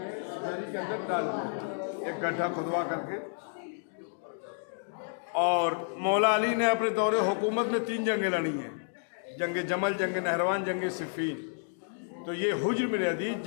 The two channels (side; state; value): right; silent; digital silence